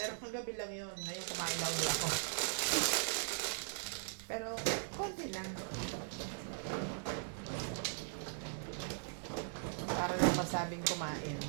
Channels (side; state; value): left; silent; digital silence